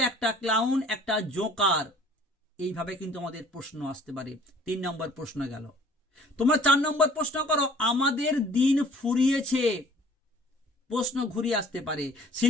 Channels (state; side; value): normal; both; correlation 0.53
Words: একটা ক্লাউন, একটা জোকার। এইভাবে কিন্তু আমাদের প্রশ্ন আসতে পারে। 3 নম্বর প্রশ্ন গেল। তোমরা 4 নম্বর প্রশ্ন করো, আমাদের দিন ফুরিয়েছে। প্রশ্ন ঘুরিয়ে আসতে পারে,